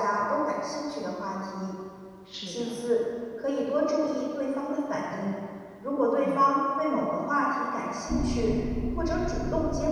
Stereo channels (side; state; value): both; identical; correlation 1.00